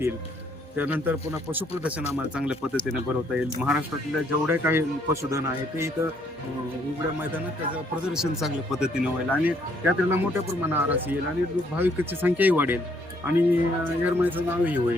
त्यानंतर पुन्हा पशुप्रदर्शन आम्हाला चांगल्या पद्धतीने भरवता येईल. महाराष्ट्रातल्या जेवढे काही पशुधन आहे ते इथं उघड्या मैदानात त्याचं प्रदर्शन चांगल्या पद्धतीने होईल आणि यात्रेला मोठ्या प्रमाणात आरास येईल आणि भाविकांची संख्याही वाढेल आणि येरमाळ्याचं नावही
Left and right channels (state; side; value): normal; both; correlation 0.68